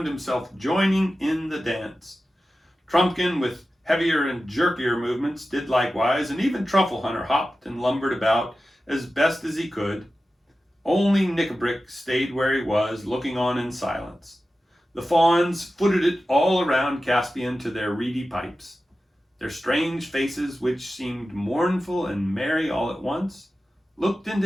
himself joining in the dance. Trumpkin, with heavier and jerkier movements, did likewise, and even Truffle Hunter hopped and lumbered about as best as he could. Only Nickabrick stayed where he was, looking on in silence. The fawns footed it all around Caspian to their reedy pipes. Their strange faces, which seemed mournful and merry all at once, looked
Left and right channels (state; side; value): normal; both; correlation 0.94